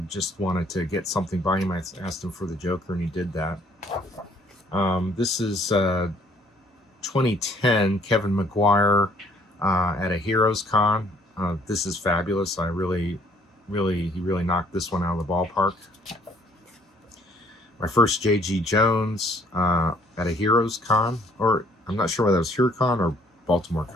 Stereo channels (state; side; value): normal; both; correlation 0.62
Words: just wanted to get something by him. I asked him for the Joker, and he did that. This is 2010, Kevin McGuire at a Heroes Con. This is fabulous. He really knocked this one out of the ballpark. My first J.G. Jones at a Heroes Con, or I'm not sure whether it was HeroCon or Baltimore